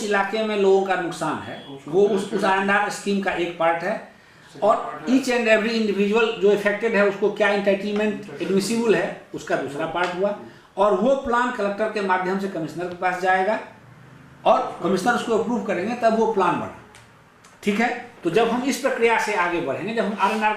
इलाके में लोगों का नुकसान है वो उस R&R स्कीम का एक पार्ट है, और ईच एंड एवरी इंडिविजुअल जो इफेक्टेड है उसको क्या इंटाइटलमेंट एडमिसिबल है उसका दूसरा पार्ट हुआ। और वो प्लान कलेक्टर के माध्यम से कमिश्नर के पास जाएगा और कमिश्नर उसको अप्रूव करेंगे, तब वो प्लान बना। ठीक है, तो जब हम इस प्रक्रिया से आगे बढ़ेंगे, जब हम R&R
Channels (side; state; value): both; identical; correlation 1.00